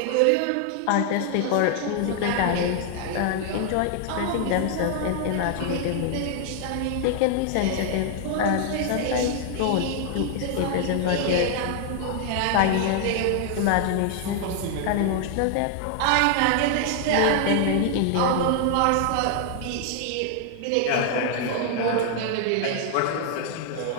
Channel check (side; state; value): both; different; correlation 0.00